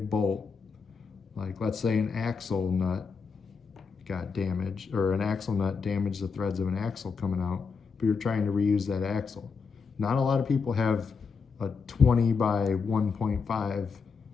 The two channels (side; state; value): right; quieter; 5.3 dB